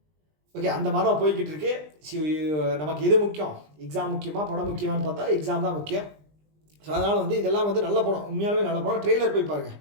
ஓகே, அந்த மாதம் போய்கிட்டு இருக்கு. நமக்கு எது முக்கியம், எக்ஸாம் முக்கியமாக படம் முக்கியமானு பார்த்தா எக்ஸாம் தான் முக்கியம். ஸோ அதனால் வந்து இதெல்லாம் வந்து நல்ல படம், உண்மையாலுமே நல்ல படம். ட்ரெய்லர் போய் பாருங்கள்,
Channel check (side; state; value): left; late; 20 ms